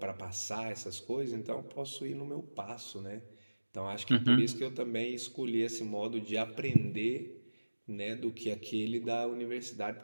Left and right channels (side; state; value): both; inverted; correlation -1.00